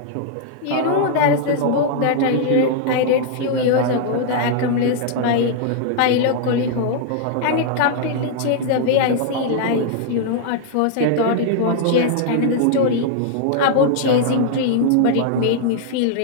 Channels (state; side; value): different; both; correlation -0.01